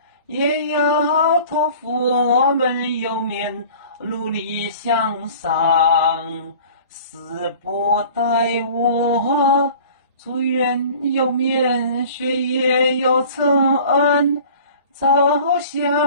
也要托付我们有面努力向上。死不待我，祝愿有面学业有成，走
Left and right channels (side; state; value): both; inverted; correlation -0.45